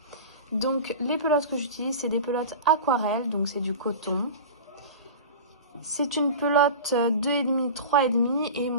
Donc les pelotes que j'utilise, c'est des pelotes aquarelles, donc c'est du coton. C'est une pelote 2,5, 3,5 et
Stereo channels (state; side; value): inverted; both; correlation -0.31